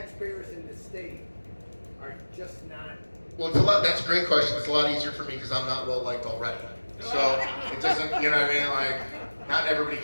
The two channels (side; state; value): both; inverted; correlation -1.00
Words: in the state are just not? Well, that's a great question. It's a lot easier for me because I'm not well liked already. So it doesn't, you know what I mean? Like, not everybody